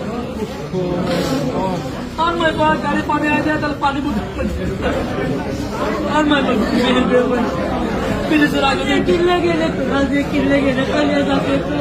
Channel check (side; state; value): both; identical; correlation 1.00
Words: আর मैं गाड़ी पानी आ जाए तो पानी और मैं फिर चला गए किले कल जाके